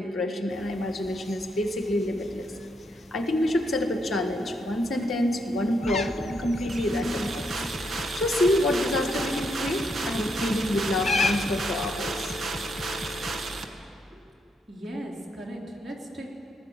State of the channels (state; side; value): normal; both; correlation 0.78